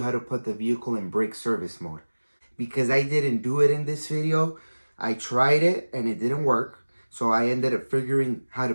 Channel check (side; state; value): both; inverted; correlation -1.00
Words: how to put the vehicle in brake service mode. Because I didn't do it in this video, I tried it and it didn't work. So I ended up figuring how